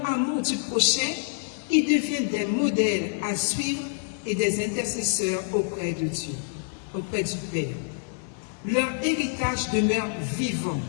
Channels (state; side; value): silent; right; digital silence